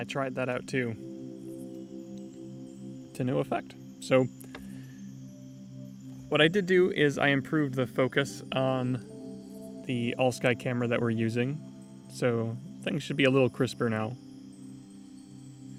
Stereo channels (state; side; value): identical; both; correlation 1.00